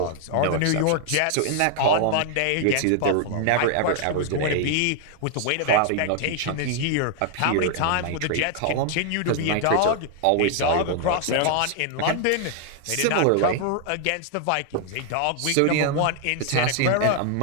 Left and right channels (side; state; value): both; different; correlation 0.00